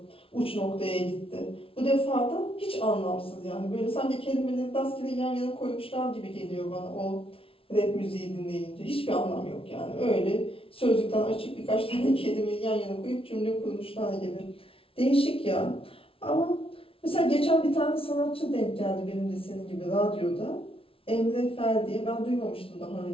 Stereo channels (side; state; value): right; late; 0.26 ms